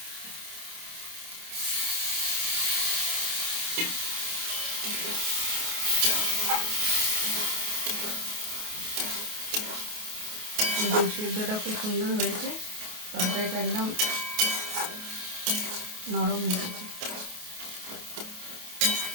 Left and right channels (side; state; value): left; late; 28 ms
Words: দেখুন সিদ্ধটা খুব সুন্দর হয়েছে, তরকারিটা একদম নরম হয়ে গেছে।